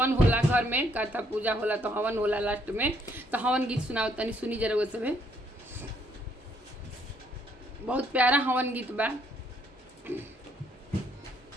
होला घर में, कथा पूजा होला तो हवन होला लास्ट में, तो हवन गीत सुनावत तनी, सुनी जरा वो सब। बहुत प्यारा हवन गीत बा।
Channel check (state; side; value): normal; both; correlation 0.69